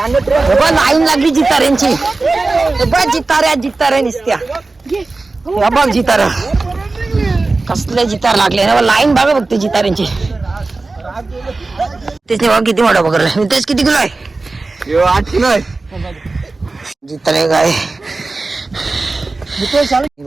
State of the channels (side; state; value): left; quieter; 3.5 dB